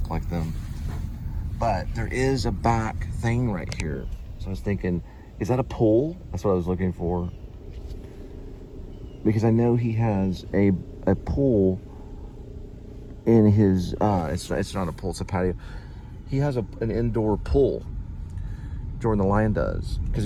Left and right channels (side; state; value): both; identical; correlation 1.00